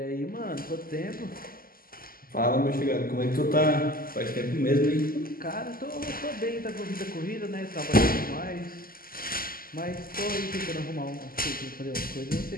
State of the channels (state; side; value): late; right; 0.42 ms